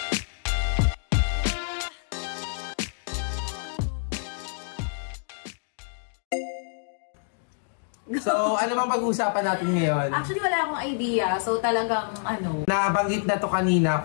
So, ano bang pag-uusapan natin ngayon? Actually, wala akong idea. So, talagang Nabanggit na to kanina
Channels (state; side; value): silent; right; digital silence